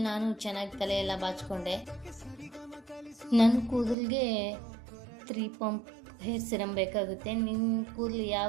ನಾನು ಚೆನ್ನಾಗಿ ತಲೆಯೆಲ್ಲ ಬಾಚಿಕೊಂಡೆ. ನನ್ನ ಕೂದಲಿಗೆ 3 ಪಂಪ್ ಹೇರ್ ಸಿರಮ್ ಬೇಕಾಗುತ್ತೆ. ನಿಮ್ಮ ಕೂದಲು ಯಾವ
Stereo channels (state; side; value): drops out; left; at 4.0 s